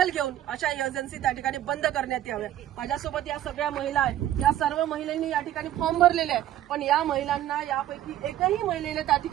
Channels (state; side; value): quieter; left; 12.6 dB